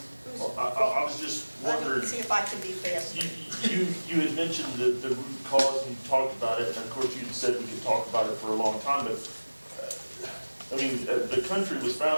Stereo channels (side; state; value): both; inverted; correlation -1.00